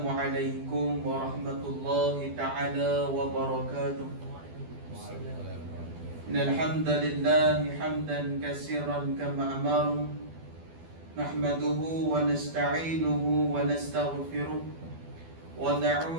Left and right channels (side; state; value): left; late; 12 ms